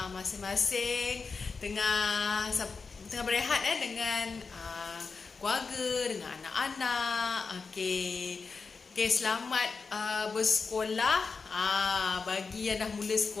Masing-masing tengah berehat dengan keluarga, dengan anak-anak. Okey, selamat bersekolah. Bagi yang dah mula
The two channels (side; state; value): right; quieter; 4.8 dB